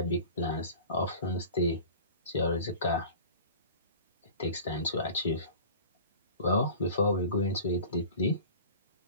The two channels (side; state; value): both; inverted; correlation -0.40